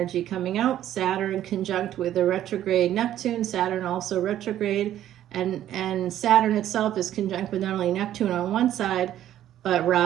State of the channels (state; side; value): quieter; left; 11.9 dB